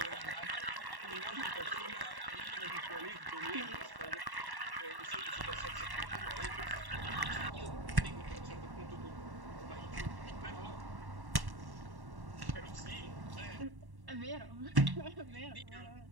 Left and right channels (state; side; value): late; left; 1.1 ms